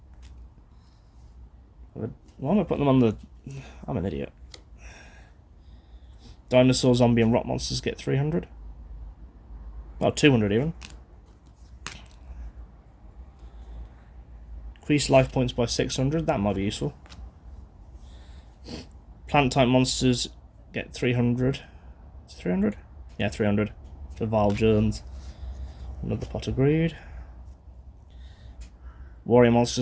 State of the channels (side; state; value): both; identical; correlation 1.00